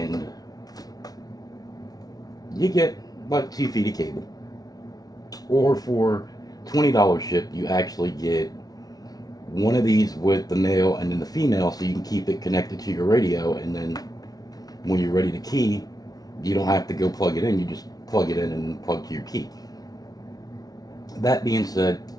you get like 2 feet of cable. Or for $20 shipped, you actually get one of these with the male and then the female, so you can keep it connected to your radio, and then when you're ready to key, you don't have to go plug it in, you just plug it in and plug to your key. That being said,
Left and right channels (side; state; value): right; late; 0.18 ms